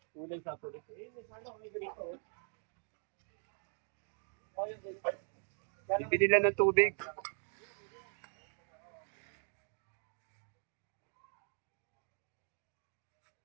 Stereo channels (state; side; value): silent; left; 51 dB below the other